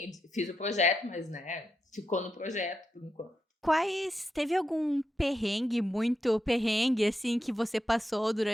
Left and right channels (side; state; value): both; normal; correlation 0.85